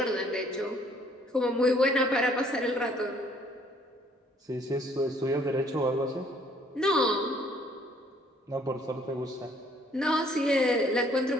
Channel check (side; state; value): both; normal; correlation 0.61